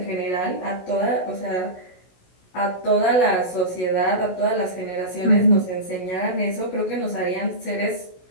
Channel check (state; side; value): late; right; 16 ms